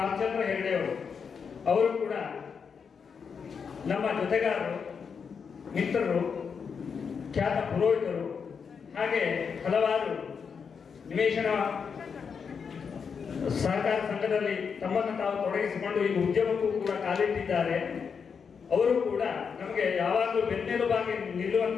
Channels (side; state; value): right; quieter; 6.2 dB